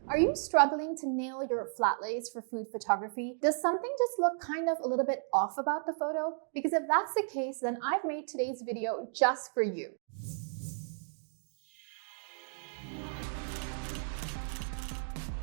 Are you struggling to nail your flat lays for food photography? Does something just look kind of a little bit off about the photo? Because if that's the case, then I've made today's video just for you.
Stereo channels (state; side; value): silent; left; digital silence